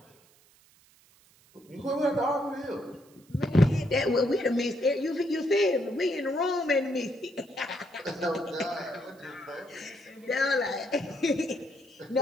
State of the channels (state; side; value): noise; right; hiss, 29 dB below the sound